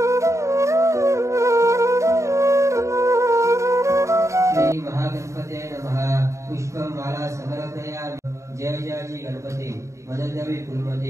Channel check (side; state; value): left; late; 0.14 ms